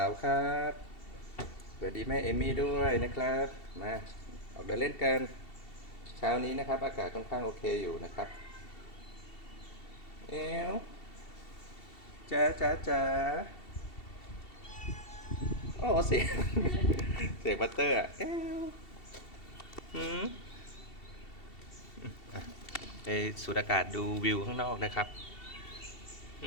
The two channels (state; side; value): late; right; 2.7 ms